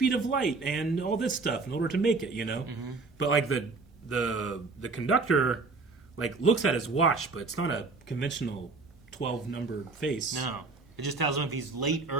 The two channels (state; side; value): quieter; left; 3.9 dB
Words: of light and all this stuff in order to make it, But, like, the conductor, like, looks at his watch, but it's not a conventional 12-number face. No. It just tells him if he's late,